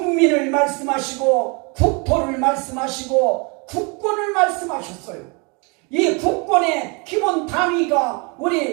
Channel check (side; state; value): left; quieter; 32.1 dB